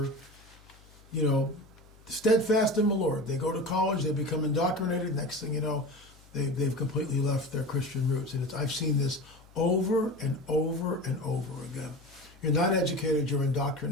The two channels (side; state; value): left; noise; hum, 25 dB below the sound